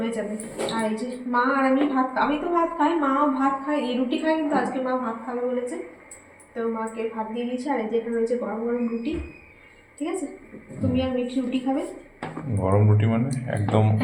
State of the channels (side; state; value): both; identical; correlation 1.00